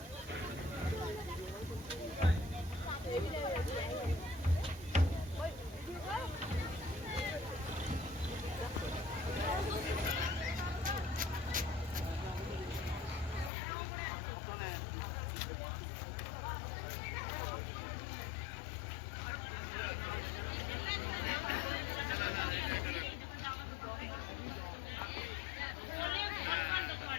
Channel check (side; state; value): right; drops out; at 13.5 s